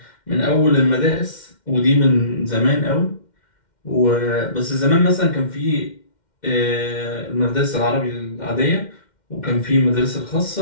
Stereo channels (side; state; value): right; late; 2.1 ms